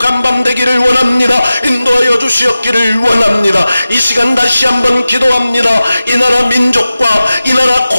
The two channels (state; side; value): inverted; both; correlation -0.95